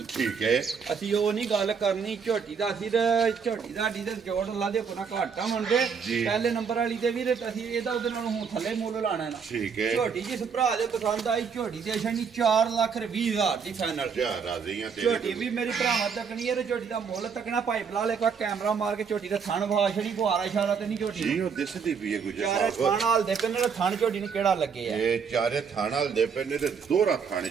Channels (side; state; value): left; quieter; 6.2 dB